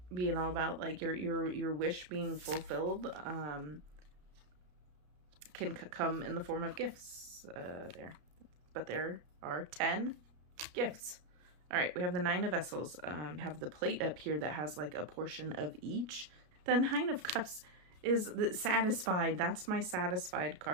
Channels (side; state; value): left; late; 33 ms